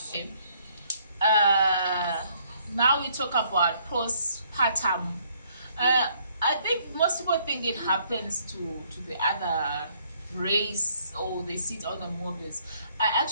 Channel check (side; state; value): both; inverted; correlation -0.66